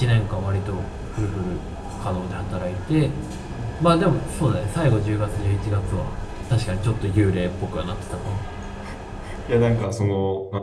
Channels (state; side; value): identical; both; correlation 1.00